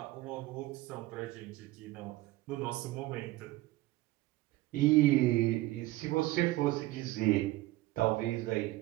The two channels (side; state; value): left; quieter; 18.0 dB